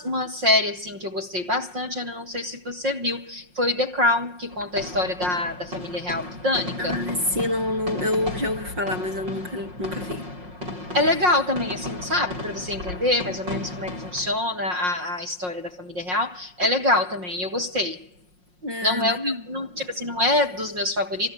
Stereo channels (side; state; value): left; late; 5.6 ms